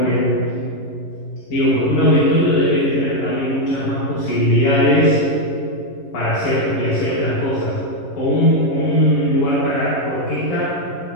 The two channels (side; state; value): right; late; 11 ms